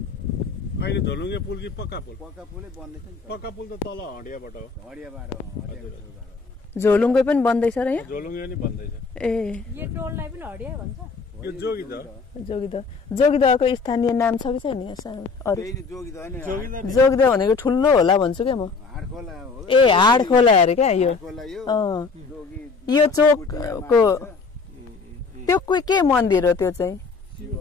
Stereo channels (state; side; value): quieter; right; 4.6 dB